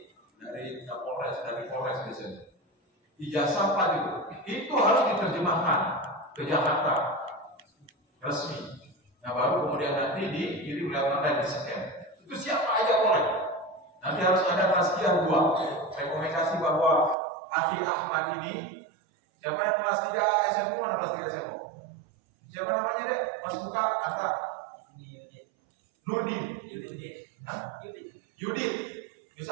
dari Kapolres dan dari Polres biasanya. Ijazah 4 itu harus diterjemahkan ke Jakarta resmi. Nah baru kemudian nanti dikirim lewat online di scan. Itu siapa aja boleh. Nanti harus ada tazkiyah 2. Rekomendasi bahwa Akhi Ahmad ini, siapa yang kelas 3 SMU, mana kelas 3 SMU? Siapa namanya dek? Mas Buka, Anta? Nurdin. Yudit.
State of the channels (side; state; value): left; drops out; at 17.2 s